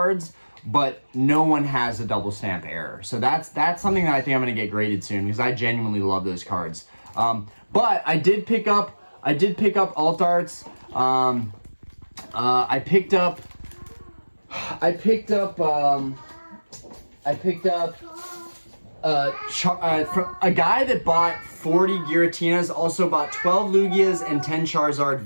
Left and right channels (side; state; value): both; inverted; correlation -1.00